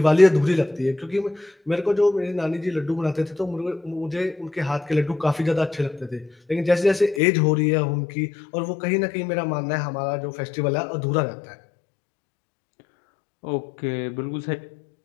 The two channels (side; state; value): right; drops out; at 7.2 s